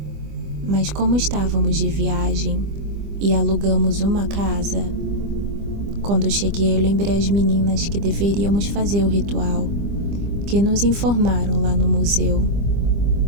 Mas como estávamos de viagem e alugamos uma casa, quando cheguei eu lembrei às meninas que deveríamos fazer o ritual que nos informaram lá no museu,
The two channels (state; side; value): late; left; 25 ms